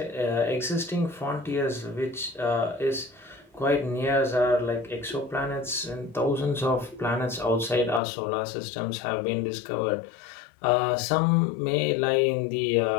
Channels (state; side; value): drops out; right; at 8.0 s